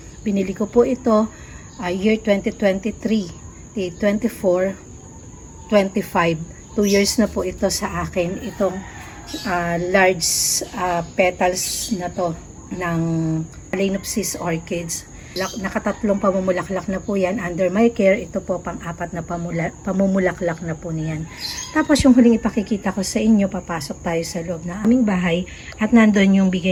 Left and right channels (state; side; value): identical; both; correlation 1.00